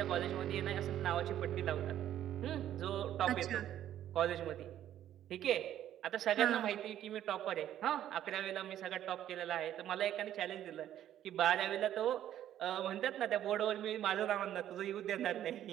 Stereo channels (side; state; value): left; quieter; 11.5 dB